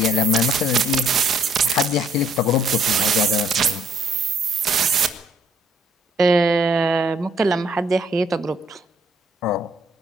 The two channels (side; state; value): both; normal; correlation 0.65